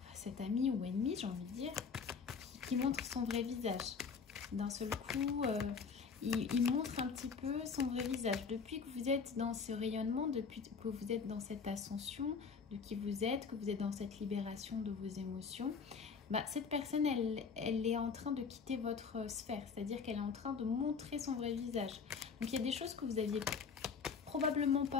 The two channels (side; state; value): right; quieter; 5.6 dB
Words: cette amie ou ennemie, j'ai envie de dire, qui montre son vrai visage. D'un seul coup, il montre un petit peu son vrai visage. Depuis que vous êtes dans ce rayonnement, depuis que vous êtes dans cette ascension de qui vous êtes, que vous êtes dans cette libération de vos émotions, bah, cette personne, elle est en train de quitter votre sphère. C'est-à-dire qu'elle est en train de montrer son vrai visage. Donc, il y a des choses que vous aviez probablement